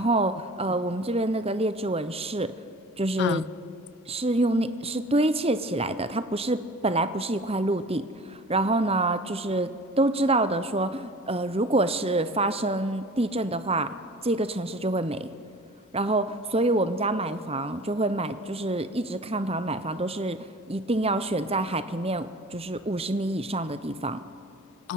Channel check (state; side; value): normal; both; correlation 0.43